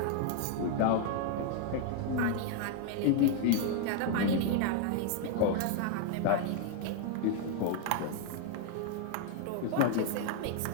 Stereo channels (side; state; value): both; different; correlation 0.00